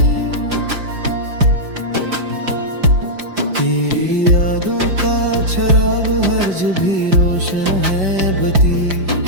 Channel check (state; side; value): late; left; 5.3 ms